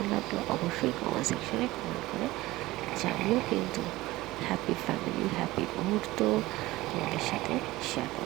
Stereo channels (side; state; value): left; quieter; 18.6 dB